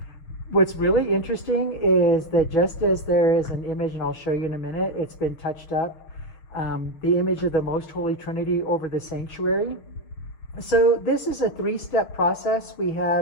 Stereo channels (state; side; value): late; right; 6.7 ms